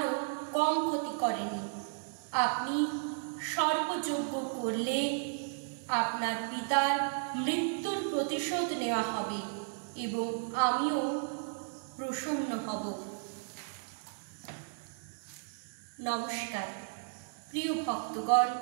কম ক্ষতি করেনি। আপনি সর্পযজ্ঞ করলে আপনার পিতার মৃত্যুর প্রতিশোধ নেওয়া হবে এবং আমিও প্রসন্ন হব। নমস্কার প্রিয় ভক্তগণ,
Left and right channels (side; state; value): left; silent; digital silence